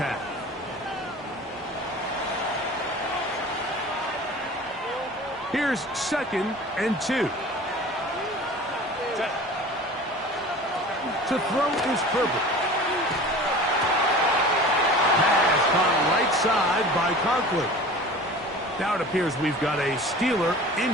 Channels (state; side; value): normal; both; correlation 0.39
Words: Here's second and 2. To throw is Herbert. Pass caught right side by Conklin. Now it appears we've got a Steeler